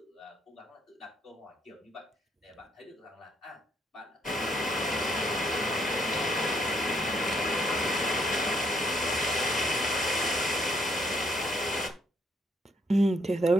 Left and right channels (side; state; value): both; normal; correlation 0.72